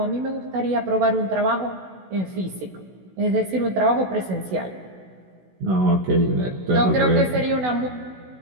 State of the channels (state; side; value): late; left; 16 ms